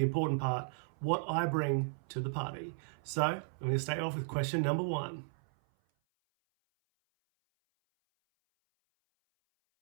important part, what I bring to the party. So I'm going to start off with question number one.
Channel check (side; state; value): left; silent; 54 dB below the other